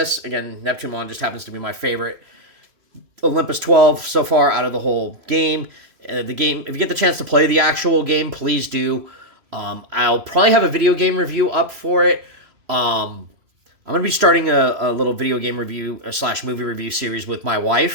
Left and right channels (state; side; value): late; left; 3.0 ms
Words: Again, Neptunemon just happens to be my favorite Olympus 12 so far out of the whole game. The game, if you get the chance to play the actual game, please do. I'll probably have a video game review up for it. I'm going to be starting a little video game review / movie review series with my